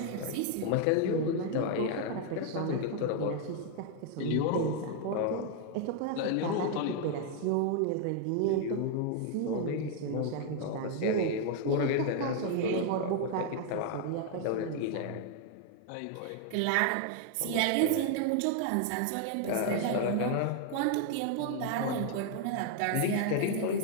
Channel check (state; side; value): different; both; correlation 0.00